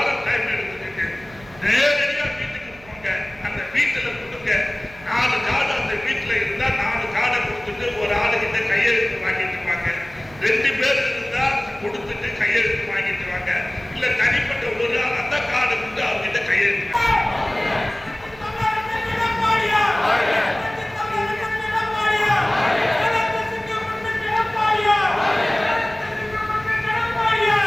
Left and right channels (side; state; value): right; noise; hum, 22 dB below the sound